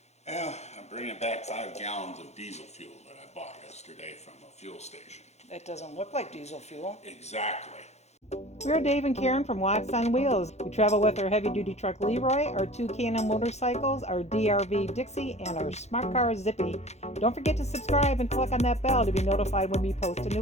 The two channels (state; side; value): late; right; 0.32 ms